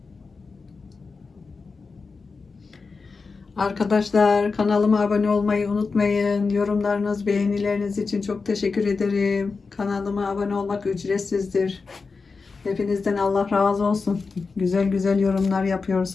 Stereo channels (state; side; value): quieter; right; 4.5 dB